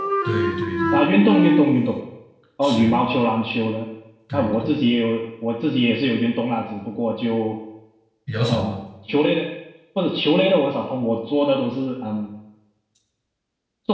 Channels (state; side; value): identical; both; correlation 1.00